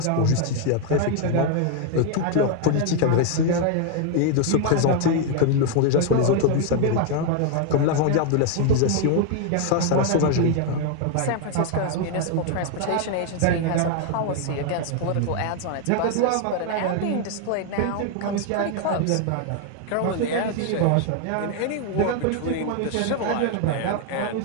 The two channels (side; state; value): both; different; correlation 0.00